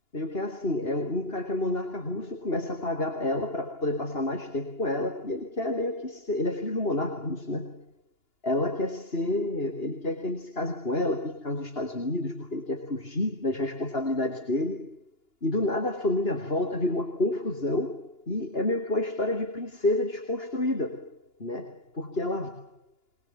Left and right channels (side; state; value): right; late; 2.9 ms